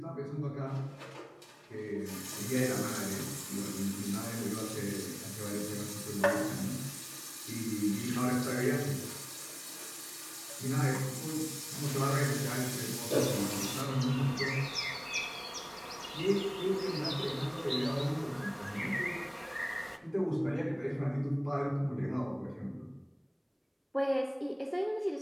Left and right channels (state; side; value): identical; both; correlation 1.00